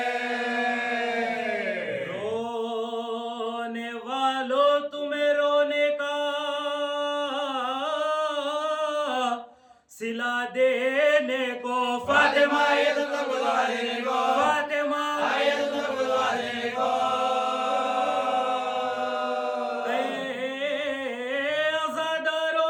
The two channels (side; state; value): both; identical; correlation 1.00